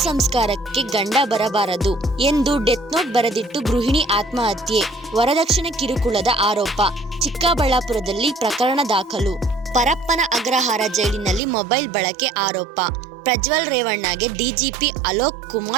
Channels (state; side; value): drops out; left; at 11.4 s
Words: ಸಂಸ್ಕಾರಕ್ಕೆ ಗಂಡ ಬರಬಾರದು ಎಂದು ಡೆತ್ ನೋಟ್ ಬರೆದಿಟ್ಟು ಗೃಹಿಣಿ ಆತ್ಮಹತ್ಯೆ. ವರದಕ್ಷಿಣೆ ಕಿರುಕುಳದ ಆರೋಪ. ಚಿಕ್ಕಬಳ್ಳಾಪುರದಲ್ಲಿ ಪ್ರಕರಣ ದಾಖಲು. ಪರಪ್ಪನ ಅಗ್ರಹಾರ ಜೈಲಿನಲ್ಲಿ ಮೊಬೈಲ್ ಬಳಕೆ ಆರೋಪ. ಪ್ರಜ್ವಲ್ ರೇವಣ್ಣಗೆ ಡಿಜಿಪಿ ಅಲೋಕ್